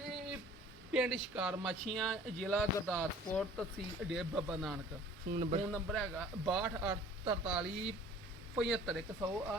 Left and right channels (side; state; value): both; normal; correlation 0.49